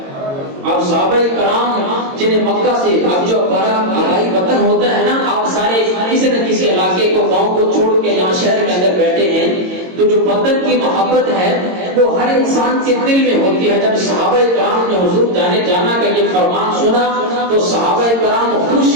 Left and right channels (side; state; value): left; late; 22 ms